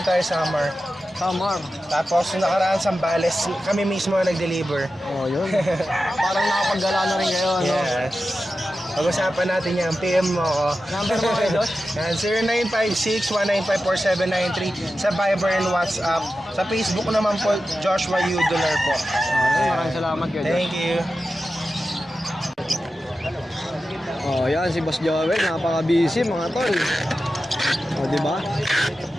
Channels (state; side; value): normal; both; correlation 0.92